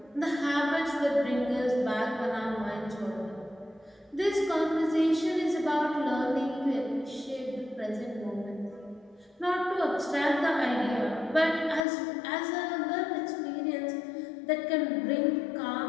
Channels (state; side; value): drops out; right; at 11.8 s